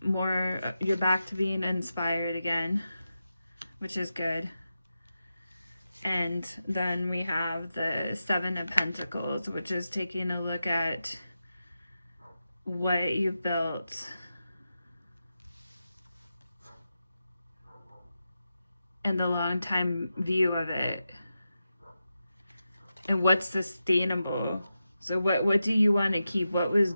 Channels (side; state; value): both; inverted; correlation -0.90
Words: more, you're back to being inspired again, which is good. And then we have the Seven of Pentacles, which is taking a look at what you built and the long time view of it, and what's sustainable. So what do you want to keep? What was